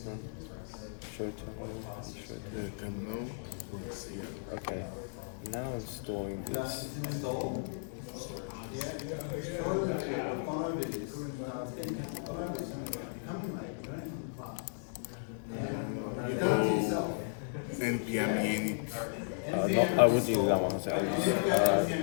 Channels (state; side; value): silent; right; digital silence